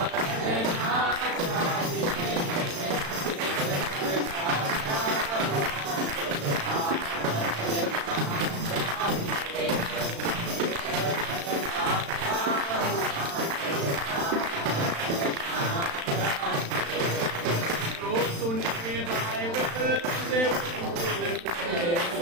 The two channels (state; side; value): late; left; 35 ms